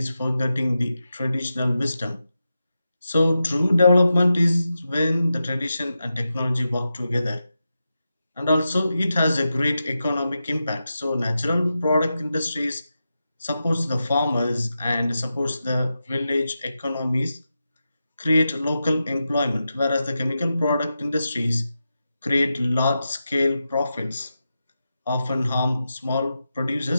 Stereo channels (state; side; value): inverted; both; correlation -0.90